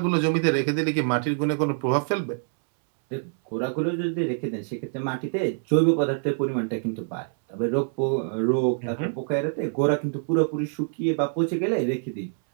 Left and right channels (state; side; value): silent; left; 61 dB below the other